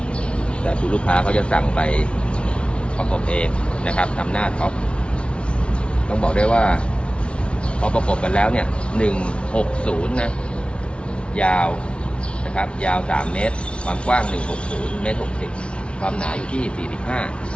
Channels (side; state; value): right; late; 0.059 ms